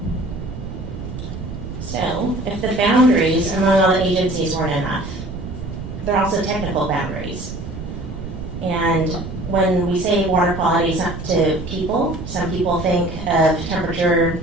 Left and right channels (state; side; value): noise; right; rumble, 9 dB below the sound